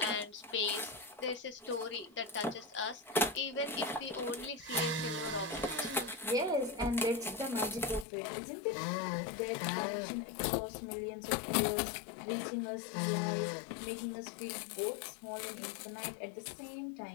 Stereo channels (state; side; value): drops out; right; at 8.1 s